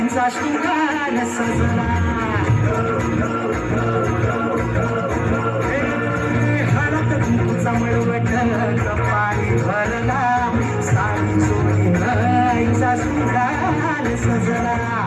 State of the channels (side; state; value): both; identical; correlation 1.00